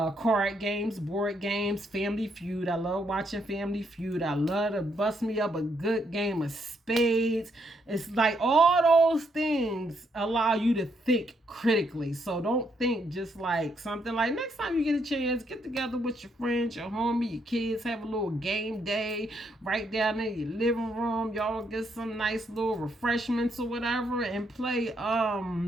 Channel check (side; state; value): both; normal; correlation 0.75